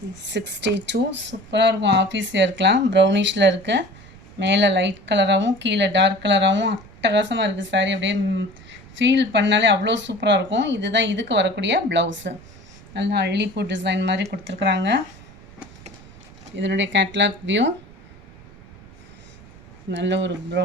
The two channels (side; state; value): right; noise; rumble, 21 dB below the sound